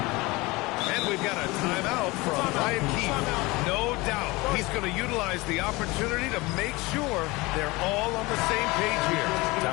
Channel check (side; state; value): right; quieter; 22.7 dB